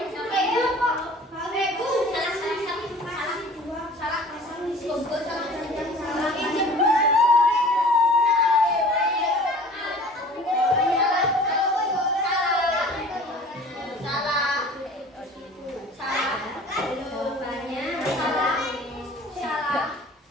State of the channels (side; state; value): both; normal; correlation 0.46